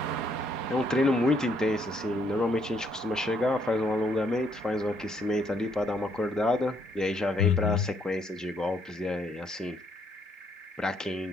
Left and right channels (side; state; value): both; normal; correlation 0.70